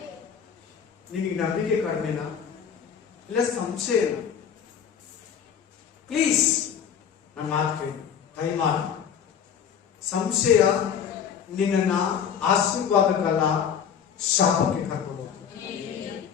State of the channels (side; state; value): right; quieter; 7.9 dB